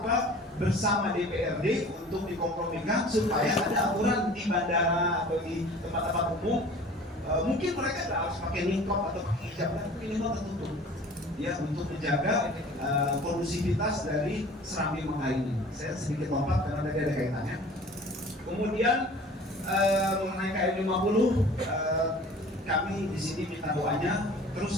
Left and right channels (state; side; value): normal; both; correlation 0.45